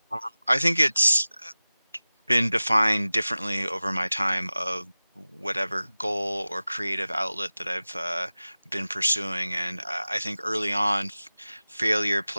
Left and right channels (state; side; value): inverted; both; correlation -0.97